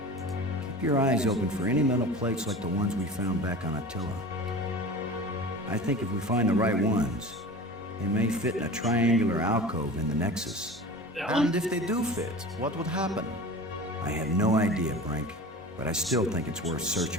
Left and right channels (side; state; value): both; normal; correlation 0.36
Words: Keep your eyes open for any metal plates like the ones we found back on Attila. I think if we find the right ones, they may fit in a triangular alcove in the Nexus. And if they do fit, what would happen? I have no idea, Brink, but I still think it's worth